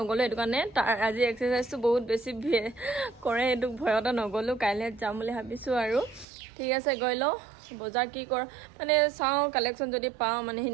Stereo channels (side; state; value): left; drops out; at 6.2 s